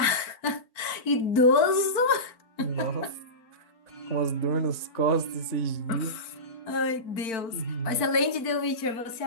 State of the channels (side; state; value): right; late; 4.4 ms